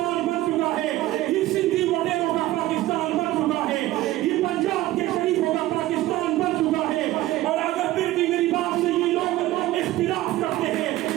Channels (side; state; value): left; quieter; 16.1 dB